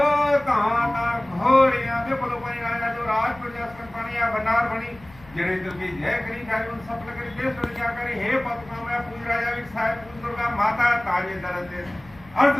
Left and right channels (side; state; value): left; noise; rumble, 23 dB below the sound